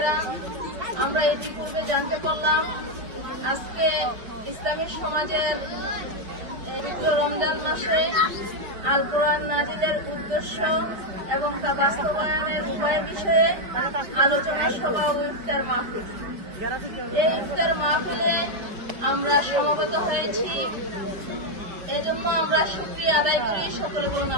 আমরা ইতিপূর্বে জানতে পারলাম আজকে ইসলামী সমাজের পবিত্র রমজান মাসে আল কোরআন নাজিলের উদ্দেশ্য এবং তা বাস্তবায়নের উপায়ের বিষয়ে আলোচনা সভা ও ইফতার মাহফিল। এই ইফতার মাহফিলে আমরা সমবেত হয়েছি, এজন্য আমরা শুকরিয়া আদায় করি। সকলে বলুন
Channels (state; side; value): late; left; 5.0 ms